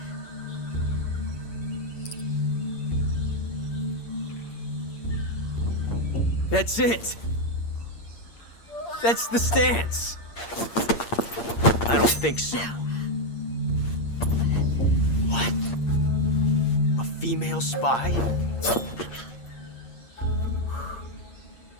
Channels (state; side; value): late; right; 8.6 ms